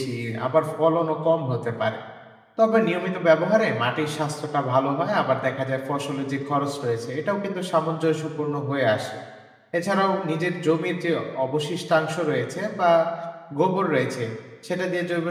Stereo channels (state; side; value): identical; both; correlation 1.00